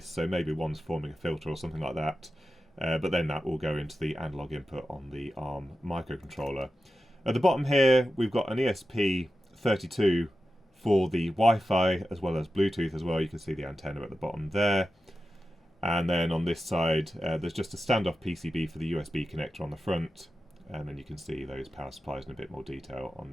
so maybe one's forming a filter or something like that. But then that will go into the analog input on the ARM microcontroller. At the bottom here, we've got an ESP32 for the Wi-Fi as well as Bluetooth as well. You can see the antenna at the bottom there. And then on this side, there's just a standoff PCB for the USB connector on the front. And then you can see those power supplies in a bit more detail on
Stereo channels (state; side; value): normal; both; correlation 0.91